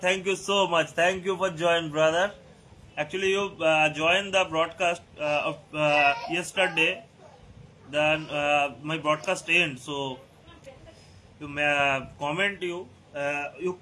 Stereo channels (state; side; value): identical; both; correlation 1.00